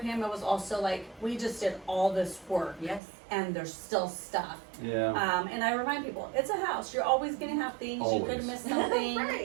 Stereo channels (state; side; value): drops out; left; at 3.0 s